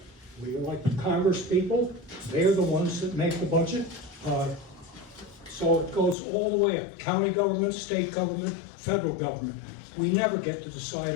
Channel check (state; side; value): drops out; right; at 6.2 s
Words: We elect Congress people. They're the ones that make the budget. So it goes all the way up. County government, state government, federal government. We never get to decide